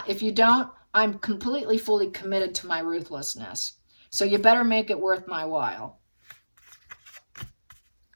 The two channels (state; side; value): inverted; both; correlation -1.00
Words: If you don't, I'm completely, fully committed to my ruthlessness. So you better make it worth my while.